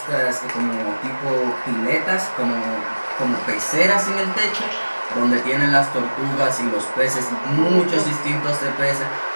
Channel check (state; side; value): inverted; both; correlation -1.00